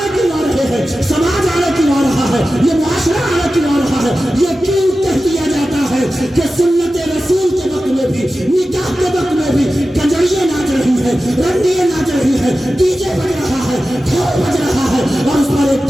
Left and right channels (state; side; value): normal; both; correlation 0.94